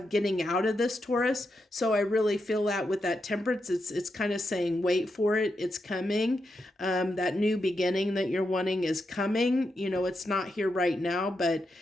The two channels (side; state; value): both; normal; correlation 0.85